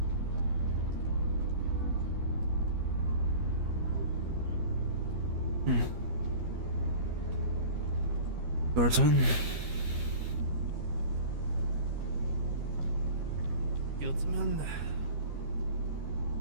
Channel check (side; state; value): left; late; 12 ms